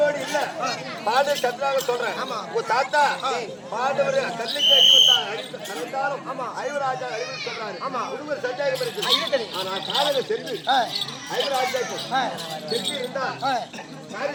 இல்ல, பாண்டவர் சத்ராக சொல்றேன். உங்க தாத்தா பாண்டவர் கல்லுக்கு அழிவுத்தாலும் 5 ராஜா அழிவு சொல்றாரு. ஒருவர் சந்தேகம் இருக்கு. ஆனா காலங்க சென்று 5 ராஜாக்கு சென்று இருந்தா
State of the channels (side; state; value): both; identical; correlation 1.00